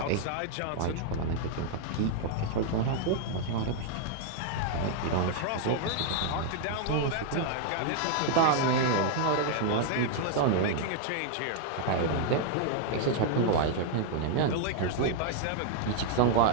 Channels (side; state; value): both; different; correlation 0.00